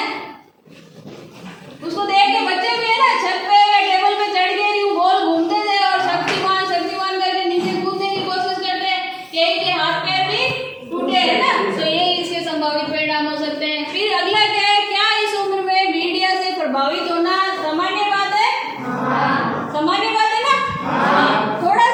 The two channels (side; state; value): both; identical; correlation 1.00